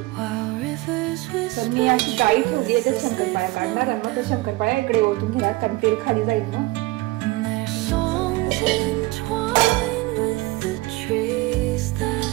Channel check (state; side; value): quieter; left; 20.4 dB